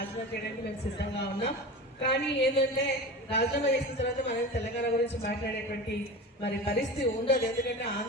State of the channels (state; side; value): normal; both; correlation 0.31